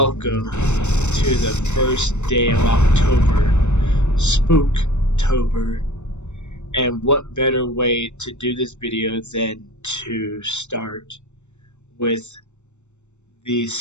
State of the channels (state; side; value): late; right; 0.83 ms